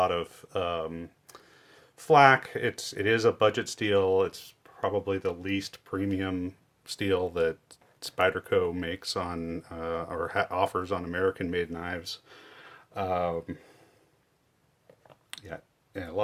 of flack. It is a budget steel. It's probably the least premium steel that Spyderco makes on or offers on American-made knives. Um, yeah, yeah, a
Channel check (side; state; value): both; identical; correlation 1.00